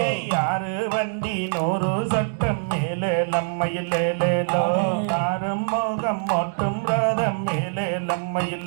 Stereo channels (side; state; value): left; silent; digital silence